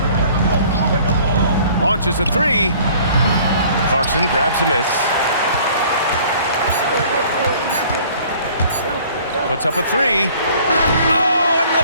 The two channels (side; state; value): both; inverted; correlation -0.53